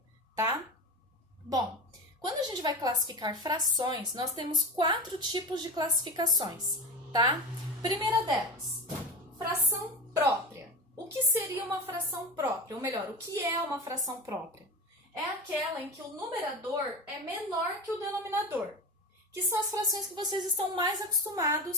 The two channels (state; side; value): normal; both; correlation 0.25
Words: tá? Bom, quando a gente vai classificar frações, nós temos 4 tipos de classificações, tá? Primeira delas, fração própria. O que seria uma fração própria? Ou melhor, o que é uma fração própria? É aquela em que o numerador é menor que o denominador, que são as frações que vocês estão mais